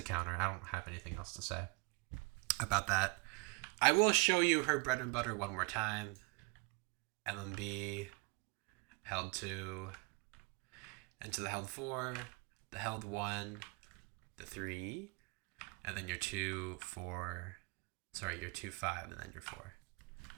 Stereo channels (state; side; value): quieter; left; 28.6 dB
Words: counter. I don't have anything else to say about that. I will show you her bread and butter one more time. LMB, held 2, into the held 4, the held 1, the 3, and then your 2, 4, sorry, your 2, 5, and then your 4.